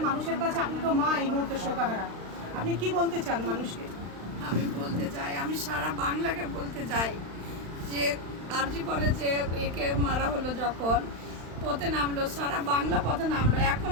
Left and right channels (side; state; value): left; late; 35 ms